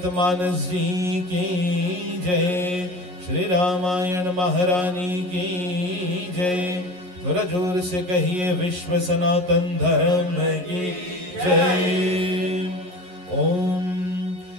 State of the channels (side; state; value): left; late; 11 ms